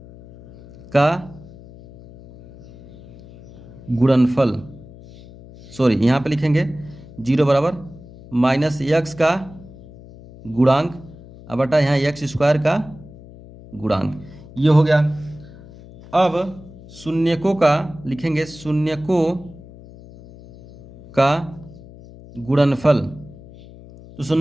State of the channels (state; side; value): noise; left; hum, 19 dB below the sound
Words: का गुणनफल, सॉरी यहाँ पे लिखेंगे 0 बराबर माइनस एक्स का गुणांक अब बटा यहाँ एक्स स्क्वायर का गुणांक, ये हो गया। अब शून्यकों का लिखेंगे शून्यकों का गुणनफल, तो